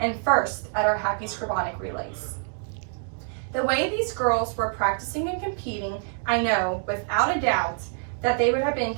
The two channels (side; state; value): left; silent; 61 dB below the other